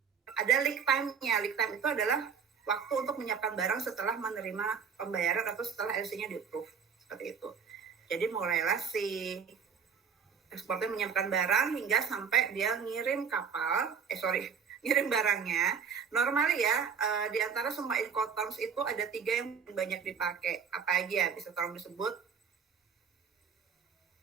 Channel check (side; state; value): left; quieter; 6.6 dB